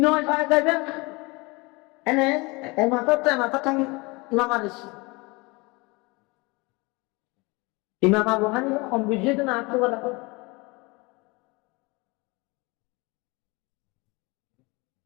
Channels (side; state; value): right; quieter; 25.6 dB